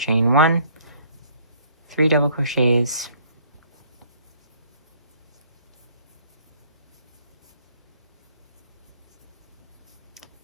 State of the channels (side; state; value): both; inverted; correlation -0.60